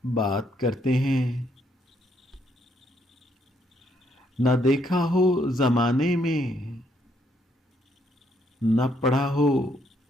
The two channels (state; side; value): normal; both; correlation 0.72